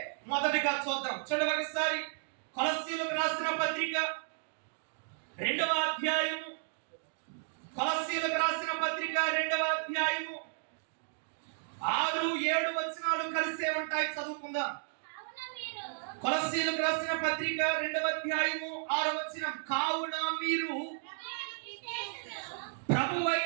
మొదటిగా చూద్దాం. చూడండి ఒకసారి కొలస్సీయులకు రాసిన పత్రిక 2వ అధ్యాయము. కొలస్సీయులకు రాసిన పత్రిక 2వ అధ్యాయము 6, 7 వచనాలు కలిసే ఉంటాయి. చదువుకుందాం. కొలస్సీయులకు రాసిన పత్రిక 2వ అధ్యాయము 6వ వచనం. కావున మీరు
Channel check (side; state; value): left; silent; digital silence